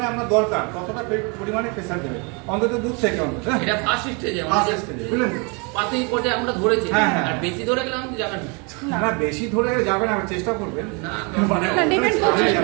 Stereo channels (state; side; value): quieter; left; 32.5 dB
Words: আপনার দরকার ততটা পরিমাণে প্রেসার দেবে, অন্তত দুধ থেকে অন্তত। এটা ফার্স্ট স্টেজে, ফার্স্ট স্টেজে বুঝলেন, পাতেই পটে আমরা ধরেছি। হ্যাঁ, আর বেশি ধরে গেলাম কি যাবেন না, বেশি ধরে যাবেন না, চেষ্টা করবেন না, মানে ডিপেন্ড করছে,